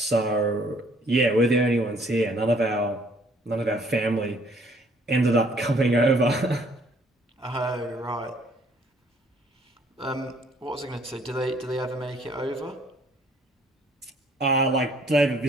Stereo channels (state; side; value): normal; both; correlation 0.61